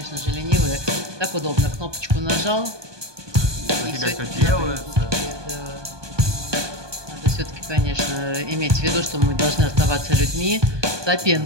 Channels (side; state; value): left; late; 1.2 ms